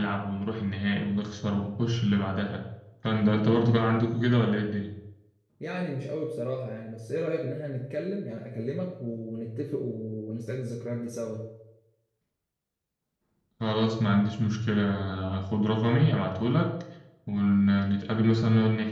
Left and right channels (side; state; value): both; identical; correlation 1.00